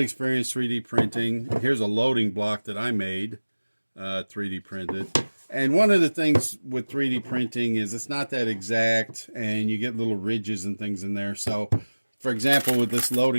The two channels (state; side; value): inverted; both; correlation -1.00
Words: experience 3D printing. Here's a loading block that I made 3D printed. And one of the things with 3D printing is it's not that exact, and you get little ridges and things in there. So, for example, with this